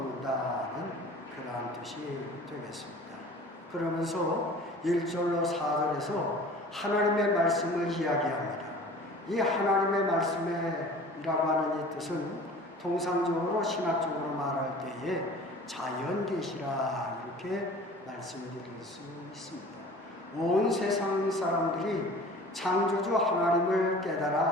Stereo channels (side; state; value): both; normal; correlation 0.43